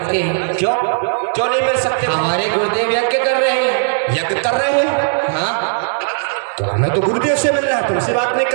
हैं। क्यों क्यों नहीं मिल सकते? हमारे गुरुदेव यज्ञ कर रहे हैं। यज्ञ कर रहे हो? हाँ, तो हमें तो गुरुदेव से मिलना है, तुमसे बात नहीं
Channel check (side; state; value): left; silent; digital silence